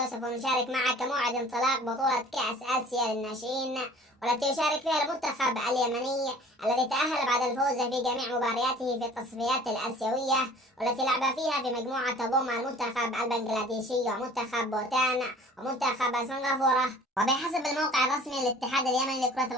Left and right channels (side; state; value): both; normal; correlation 0.48